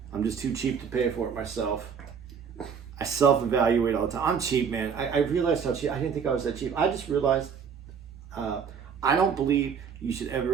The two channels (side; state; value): left; quieter; 6.7 dB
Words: I'm just too cheap to pay for it myself. I self-evaluate all the time. I'm cheap, man. I realized how cheap. I didn't think I was that cheap. I just realized I don't believe you should